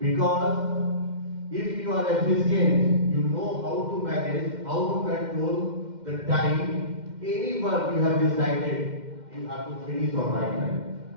if you are efficient, you know how to manage, how to control the time, any work you have decided, you have to finish on right time.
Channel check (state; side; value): late; left; 2.1 ms